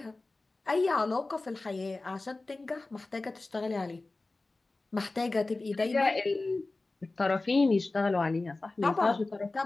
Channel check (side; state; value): right; quieter; 3.2 dB